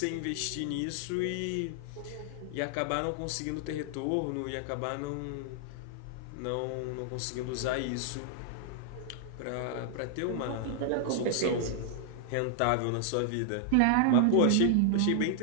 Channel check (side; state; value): both; different; correlation -0.01